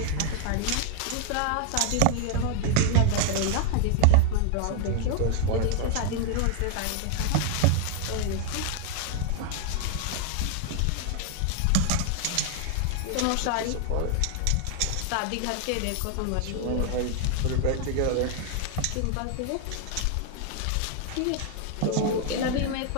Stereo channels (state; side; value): different; both; correlation 0.00